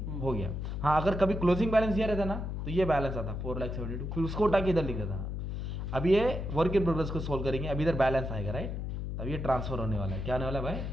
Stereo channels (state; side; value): noise; left; hum, 4 dB below the sound